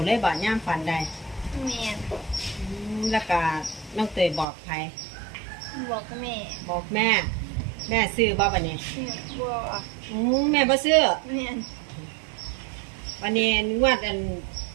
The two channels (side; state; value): left; drops out; at 4.5 s